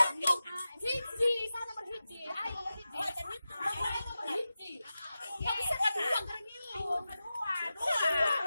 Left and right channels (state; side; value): inverted; both; correlation -0.93